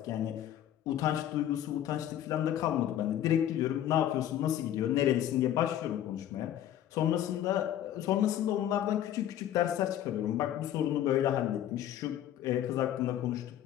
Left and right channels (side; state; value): right; quieter; 11.5 dB